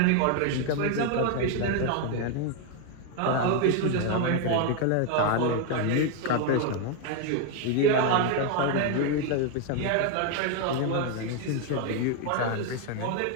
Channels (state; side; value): different; both; correlation 0.01